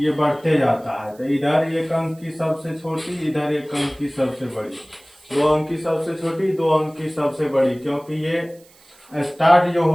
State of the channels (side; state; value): right; noise; hiss, 28 dB below the sound